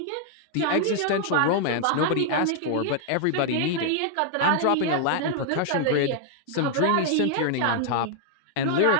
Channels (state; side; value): different; both; correlation 0.00